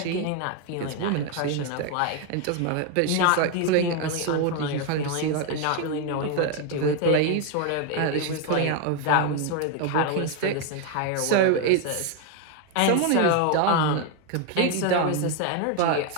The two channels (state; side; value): different; both; correlation 0.01